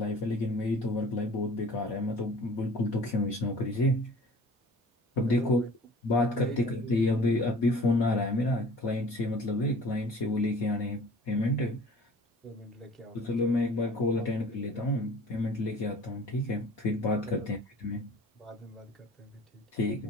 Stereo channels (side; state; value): both; normal; correlation 0.47